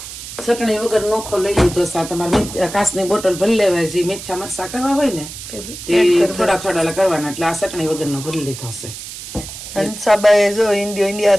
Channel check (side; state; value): right; noise; hiss, 11 dB below the sound